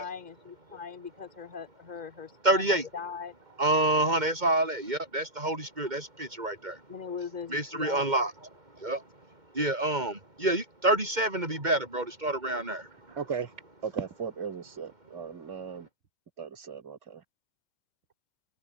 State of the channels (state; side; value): late; left; 2.1 ms